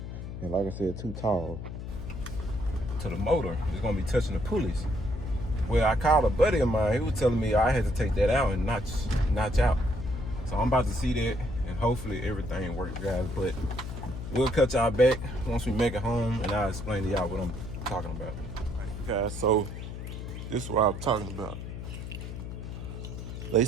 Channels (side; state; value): left; noise; hum, 8 dB below the sound